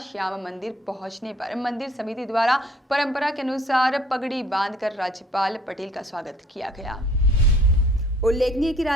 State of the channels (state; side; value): normal; both; correlation 0.58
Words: श्याम मंदिर पहुंचने पर मंदिर समिति द्वारा परंपरा के अनुसार पगड़ी बांधकर राज्यपाल पटेल का स्वागत किया गया। उल्लेखनीय कि